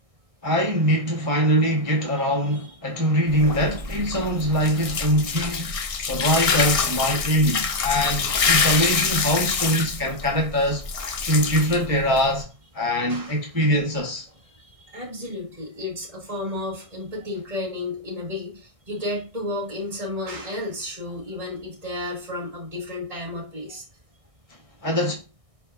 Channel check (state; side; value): late; left; 1.6 ms